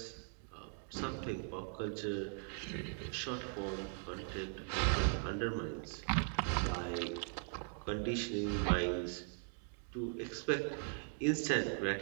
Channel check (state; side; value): silent; left; 51 dB below the other